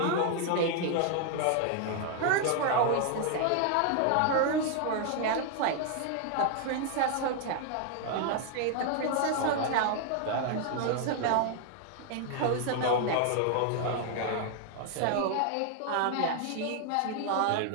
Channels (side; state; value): both; different; correlation 0.00